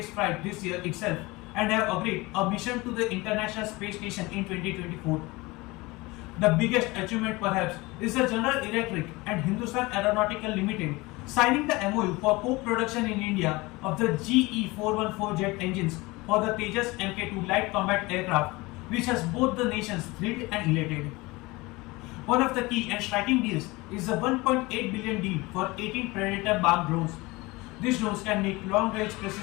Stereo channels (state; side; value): quieter; right; 22.6 dB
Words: flight this year itself and have agreed a mission to the International Space Station in 2024. The biggest achievement perhaps is the General Electric and Hindustan Aeronautical Limited signing the MOU for co-production in India of the GE414 jet engines for the Tejas Mk2 light combat aircraft, which has both the nations thrilled and elated. One of the key and striking deals is the $1.8 billion deal for 18 Predator bomb drones. These drones can make long-range